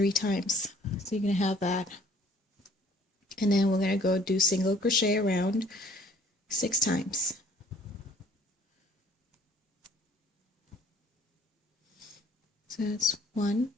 times. So you're going to have that. And then we're going to go do single crochet around 6 times. So that's 1.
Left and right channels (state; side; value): normal; both; correlation 0.57